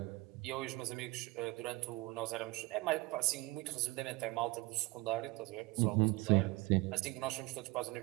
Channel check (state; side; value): quieter; left; 21.8 dB